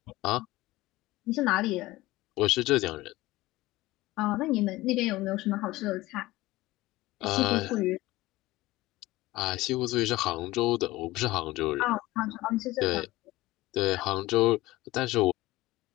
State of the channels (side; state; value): right; quieter; 18.5 dB